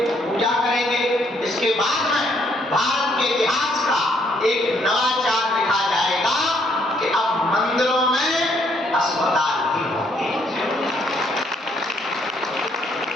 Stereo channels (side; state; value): both; normal; correlation 0.69